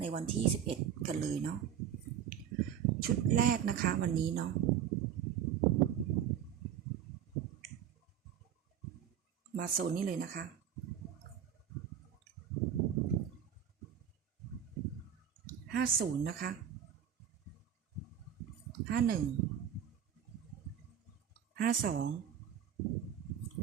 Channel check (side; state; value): left; quieter; 9.3 dB